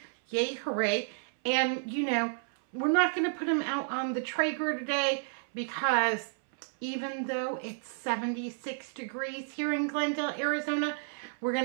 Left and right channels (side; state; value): left; silent; 57 dB below the other